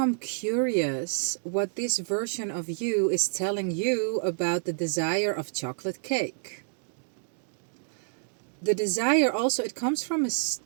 curious what this version of you is telling you about the desire of chocolate cake. The desire also, it comes from a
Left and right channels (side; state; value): left; silent; digital silence